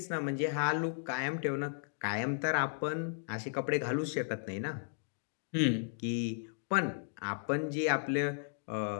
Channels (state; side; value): silent; right; digital silence